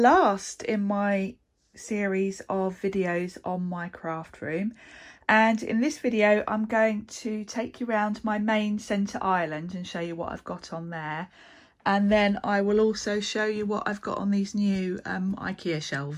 in my series of videos on my craft room, and in this video I'm going to take you around my main centre island and show you what I've got on there, and then I will also show you what I've got on these new Ikea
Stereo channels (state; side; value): identical; both; correlation 1.00